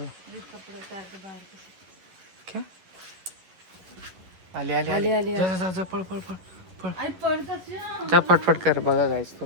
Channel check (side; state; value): left; late; 11 ms